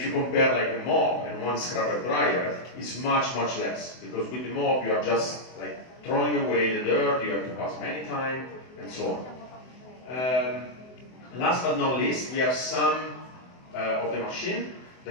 you compare like a mop and one scrubber dryer, is much less, because with the mop you are just like throwing away the dirt, you have to pass many times and so on. Last but not least, we have some of the machine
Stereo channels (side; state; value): right; late; 24 ms